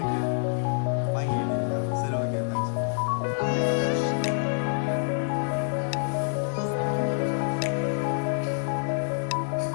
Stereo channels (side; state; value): right; silent; digital silence